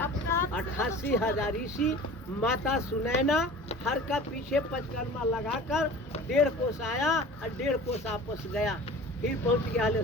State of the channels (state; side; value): normal; both; correlation 0.40